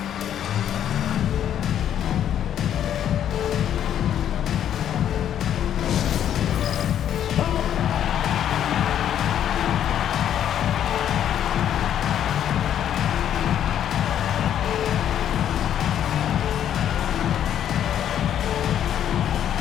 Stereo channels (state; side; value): quieter; right; 10.1 dB